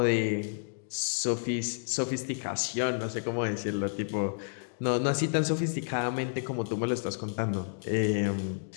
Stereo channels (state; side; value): silent; right; digital silence